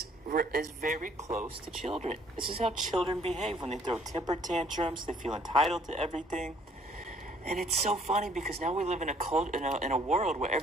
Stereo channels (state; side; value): normal; both; correlation 0.61